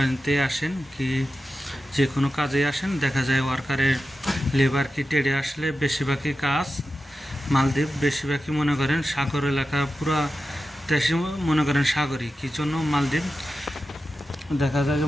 আসেন কি যে কোনো কাজে আসেন, দেখা যায় ওয়ার্কারের লেবার কি টেডে আসলে বেশিরভাগই কাজ মালদ্বীপ বেশিরভাগই মনে করেন সাগর এলাকা, পুরো দেশে মনে করেন সাগরই। কী জন্য মালদ্বীপ দেখা যায়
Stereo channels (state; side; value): normal; both; correlation 0.92